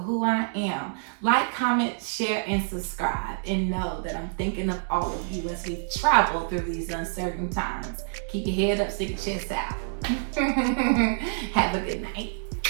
I am. Like, comment, share, and subscribe. And know that I'm thinking of all of you as we travel through these uncertain times. Keep your head up, stick your chest out. Have a good night.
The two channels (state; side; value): silent; left; 60 dB below the other